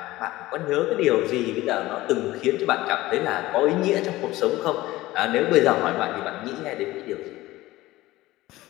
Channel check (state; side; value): quieter; right; 17.7 dB